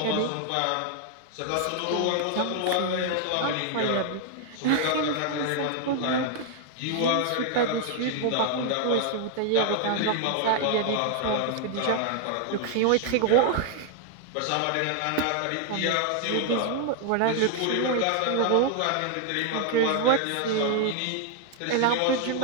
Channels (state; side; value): different; both; correlation 0.00